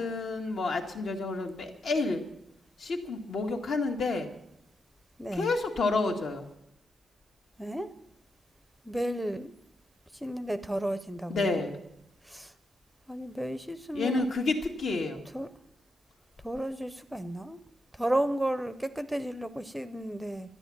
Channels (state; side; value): normal; both; correlation 0.84